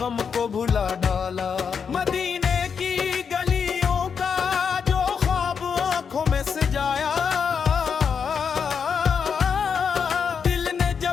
गम को भुला डाला। मदीने की गलियों का जो ख्वाब आंखों में सजाया, दिल ने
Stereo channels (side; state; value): right; quieter; 6.5 dB